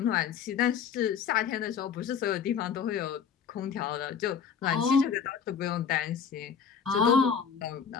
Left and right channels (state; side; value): quieter; right; 7.1 dB